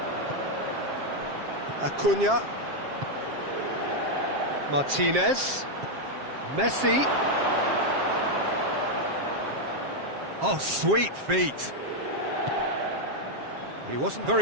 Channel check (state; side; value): late; left; 7.5 ms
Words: Acuna. Martinez. Messi. Oh, sweet feet. He wasn't